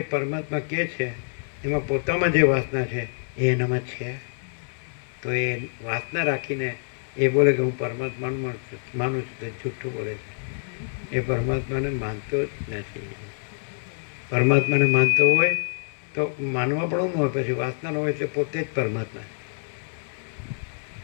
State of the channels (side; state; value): right; silent; digital silence